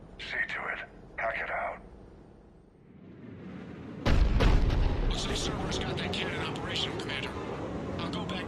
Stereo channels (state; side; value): identical; both; correlation 1.00